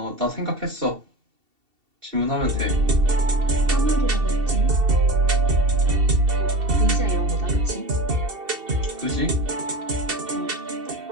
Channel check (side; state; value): left; late; 2.7 ms